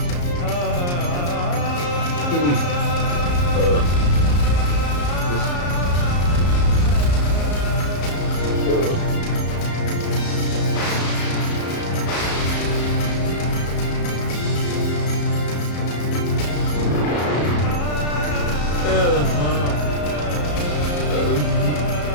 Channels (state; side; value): late; right; 34 ms